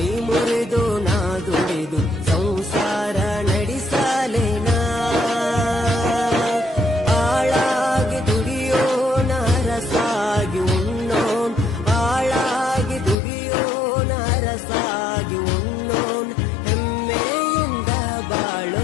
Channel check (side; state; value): right; drops out; at 13.2 s